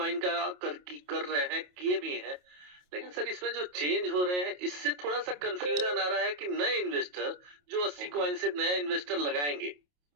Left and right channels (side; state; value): left; late; 28 ms